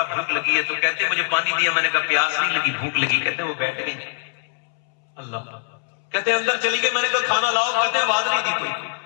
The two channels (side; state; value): right; silent; 64 dB below the other